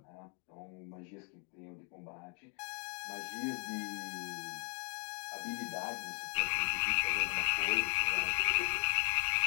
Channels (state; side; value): quieter; right; 38.7 dB